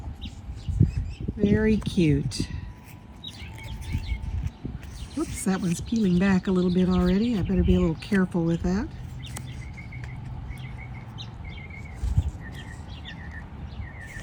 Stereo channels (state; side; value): identical; both; correlation 1.00